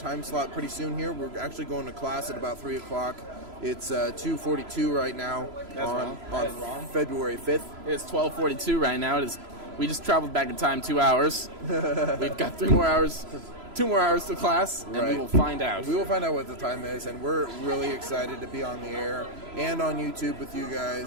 slot pretty soon here. We're actually going to class at about 3 o'clock. It's 2:42 right now on February 5th. It's 12:42 right now. We just traveled back in time 2 hours. We've got 2 more hours to class, and we will find out. We will find out what the time is, and we're really excited to be on the air and on YouTube with you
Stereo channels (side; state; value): left; late; 3.0 ms